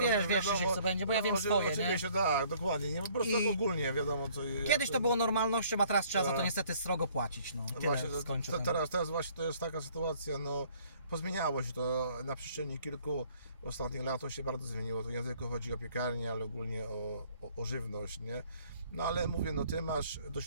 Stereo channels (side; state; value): both; inverted; correlation -0.59